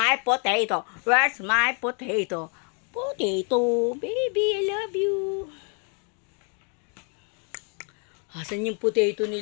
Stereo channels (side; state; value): right; quieter; 39.3 dB